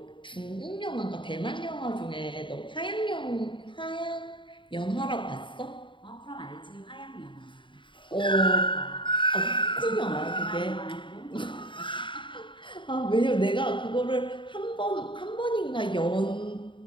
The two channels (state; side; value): late; right; 0.24 ms